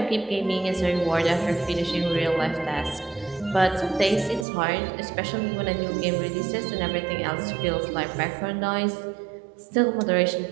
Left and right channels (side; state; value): left; drops out; at 4.5 s